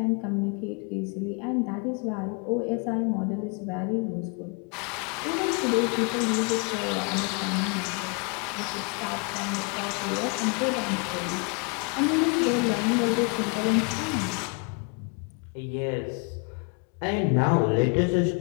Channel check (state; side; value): quieter; right; 35.0 dB